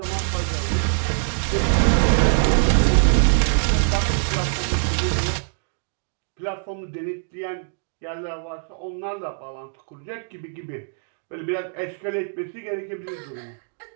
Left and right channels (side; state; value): left; silent; digital silence